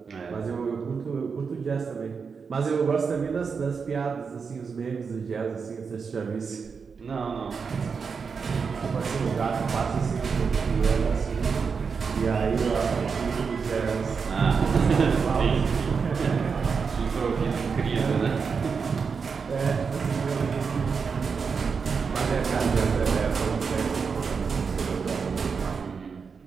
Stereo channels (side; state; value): left; quieter; 5.6 dB